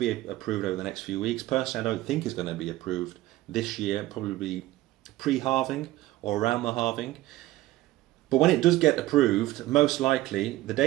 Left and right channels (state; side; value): quieter; left; 16.7 dB